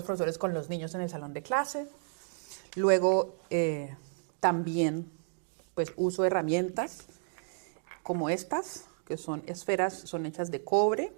profesores con los niños en el salón de clase. Luego también pues uso herramientas como estas, que son esferas, son hechas de cobre.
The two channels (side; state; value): left; silent; digital silence